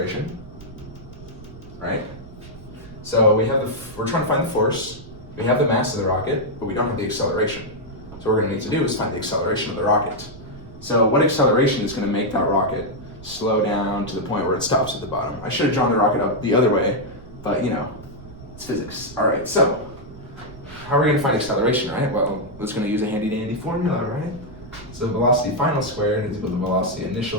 right? So we're trying to find the force. We have the mass of the rocket, but we don't have the acceleration. So what we're going to need to do is find the acceleration of the rocket. So what acceleration is going to make that rocket slow down to the point where it stops at the bottom? I should have drawn the rocket up the other way, but it's physics. All right, so how are we going to find acceleration, right? Well, it's going to use a handy dandy formula, right? So velocity final squared is equal to velocity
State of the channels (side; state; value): right; noise; rumble, 17 dB below the sound